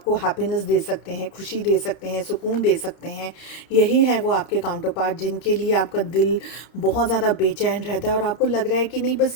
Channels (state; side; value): late; right; 31 ms